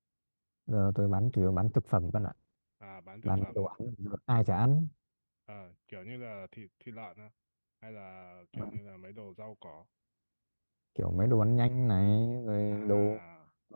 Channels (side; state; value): both; inverted; correlation -1.00